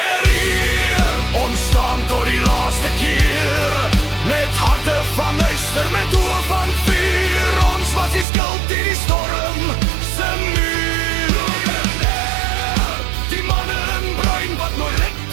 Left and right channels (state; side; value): drops out; left; at 8.2 s